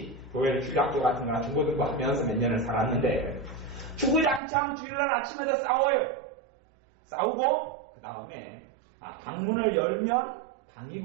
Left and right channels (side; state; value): left; drops out; at 4.4 s